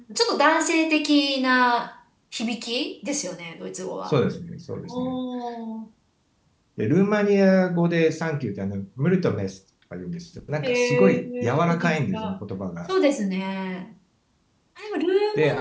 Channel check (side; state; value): both; identical; correlation 1.00